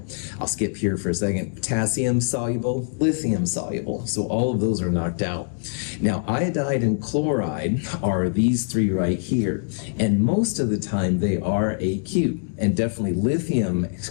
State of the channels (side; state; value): right; silent; digital silence